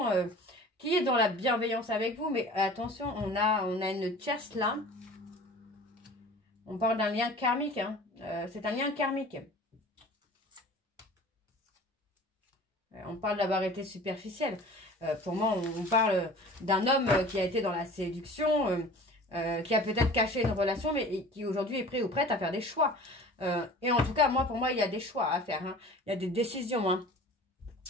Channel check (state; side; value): normal; both; correlation 0.42